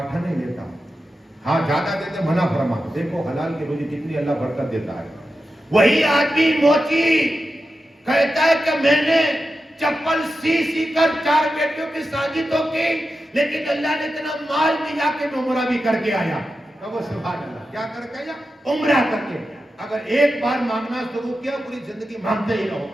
آنے لیتا، ہاں زیادہ دیتے منع فرما۔ دیکھو حلال کی روزی کتنی اللہ برکت دیتا ہے۔ وہی آدمی موچی کہتا ہے کہ میں نے چپل سی کر 4 بیٹیوں کی شادی تو کی، لیکن اللہ نے اتنا مال دیا کہ میں عمرہ بھی کر کے آیا۔ کہو سبحان اللہ۔ کیا کر کے آیا؟ عمرہ کر کے۔ اگر ایک بار مانگنا شروع کیا پوری زندگی مانگتے ہی رہو۔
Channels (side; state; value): both; normal; correlation 0.91